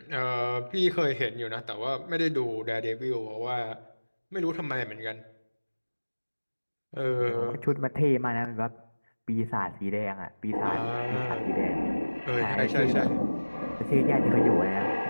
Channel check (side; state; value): both; inverted; correlation -1.00